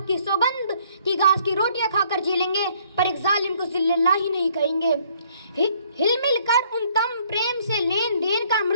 की सौगंध की घास की रोटियां खाकर जी लेंगे पर एक जालिम को जिल्लल्लाह ही नहीं कहेंगे। हिलमिल कर उन तम प्रेम से लेन देन का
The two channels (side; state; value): both; inverted; correlation -0.63